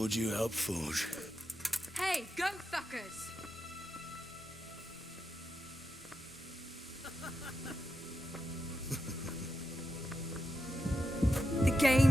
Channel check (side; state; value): both; normal; correlation 0.87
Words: you helped forge. Hey, go fuckers! The